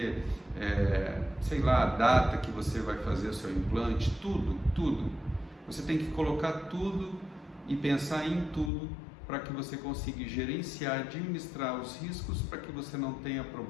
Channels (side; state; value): right; drops out; at 8.7 s